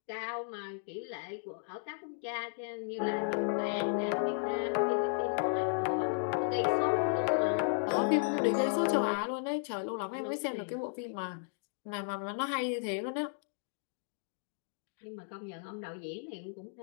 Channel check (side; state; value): right; silent; digital silence